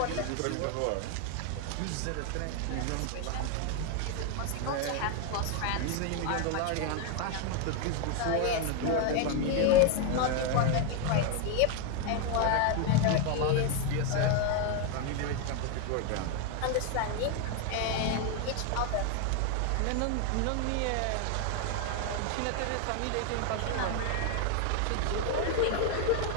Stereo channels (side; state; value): both; different; correlation 0.01